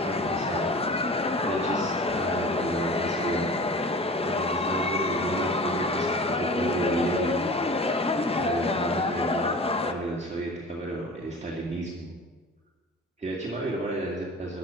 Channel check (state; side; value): normal; both; correlation 0.39